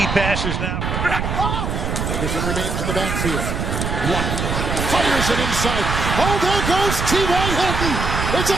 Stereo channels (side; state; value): right; noise; rumble, 2 dB below the sound